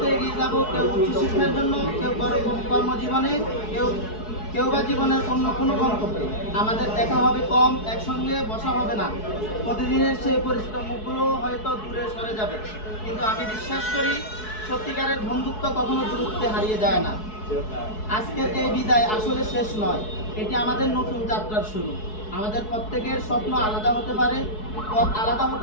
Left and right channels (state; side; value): late; right; 4.7 ms